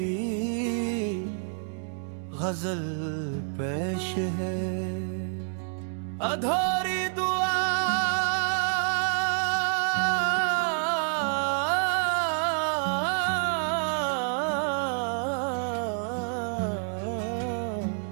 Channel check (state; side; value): silent; left; digital silence